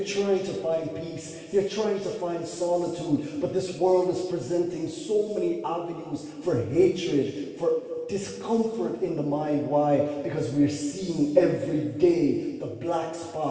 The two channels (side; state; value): both; identical; correlation 1.00